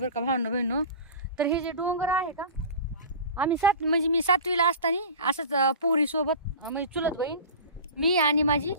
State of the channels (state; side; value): inverted; both; correlation -0.35